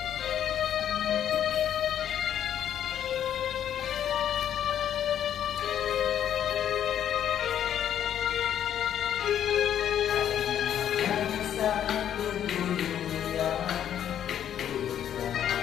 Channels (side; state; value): right; quieter; 10.0 dB